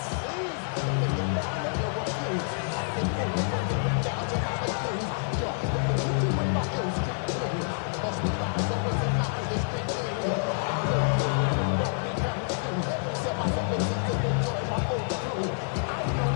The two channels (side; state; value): right; silent; 59 dB below the other